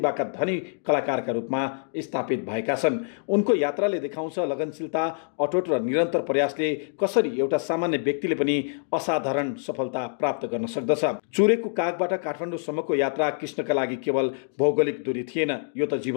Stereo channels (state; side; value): silent; right; digital silence